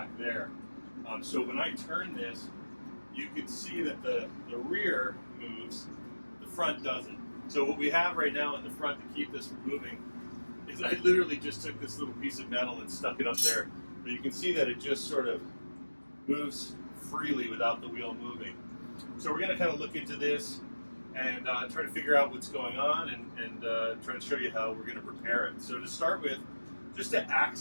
there. So when I turn this, you can see that the rear moves, the front doesn't. So what we have right now in the front to keep this from moving is I literally just took this little piece of metal and stuck it up there. But you can see that it just sort of moves freely without the wheel moving. So we're going to kind of look into this and try to figure out what's going on and try to show you how we're going to repair it. So to start with, just to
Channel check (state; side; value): inverted; both; correlation -1.00